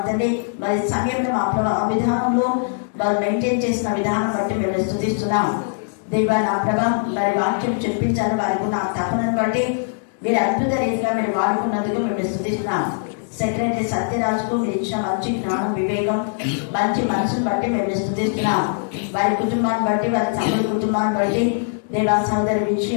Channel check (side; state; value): right; silent; digital silence